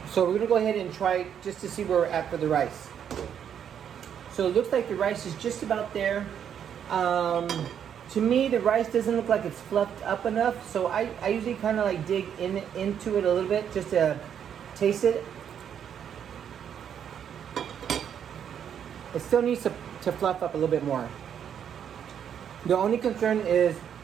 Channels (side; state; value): left; quieter; 8.7 dB